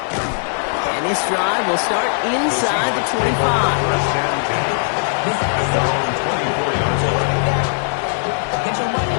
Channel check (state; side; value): silent; right; digital silence